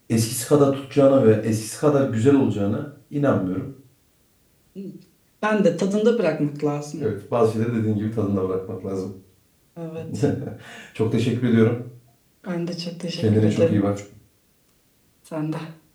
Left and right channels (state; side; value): identical; both; correlation 1.00